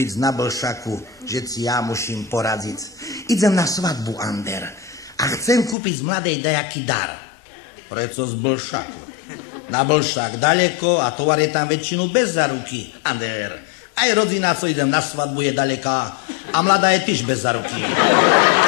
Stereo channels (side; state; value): right; drops out; at 5.8 s